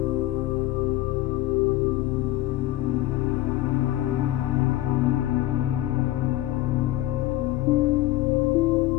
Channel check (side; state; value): right; quieter; 15.8 dB